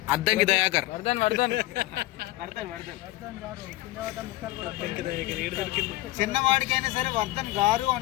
అద్దంకి దయాకర్. చిన్నవాడికైనా సరే వర్ధన్ గారు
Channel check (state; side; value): quieter; right; 17.6 dB